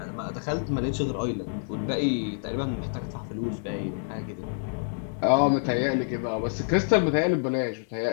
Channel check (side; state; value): right; silent; digital silence